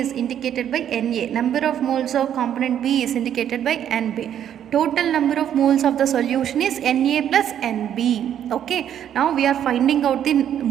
indicated by Na. Number of moles of component B is indicated by Nb. Total number of moles of the solution is Na plus Nb. Okay, now we are finding out the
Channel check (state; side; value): quieter; left; 9.9 dB